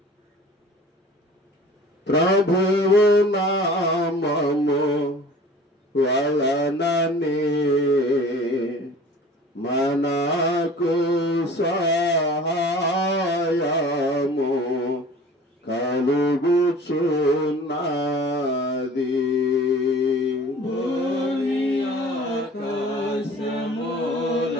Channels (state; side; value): normal; both; correlation 0.45